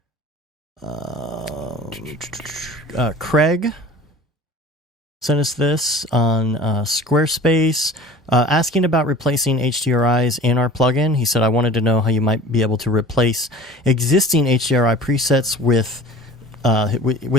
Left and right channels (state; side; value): normal; both; correlation 0.42